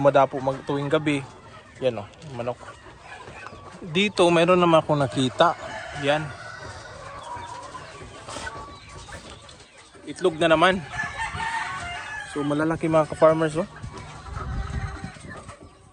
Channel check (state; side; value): identical; both; correlation 1.00